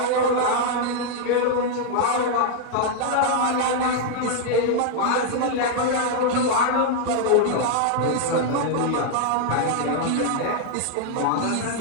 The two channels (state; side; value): different; both; correlation 0.00